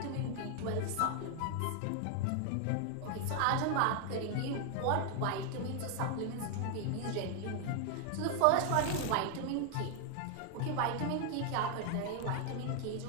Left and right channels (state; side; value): different; both; correlation 0.00